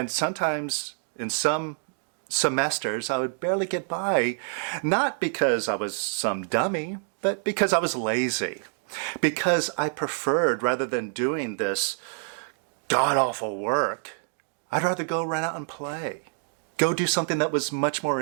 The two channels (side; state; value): left; silent; digital silence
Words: sometimes in some semesters, I would barely get by, not because I was some dummy, but because I was lazy. Because I preferred, rather than doing this god-awful work, I'd rather go run out and play. Go do something that was much more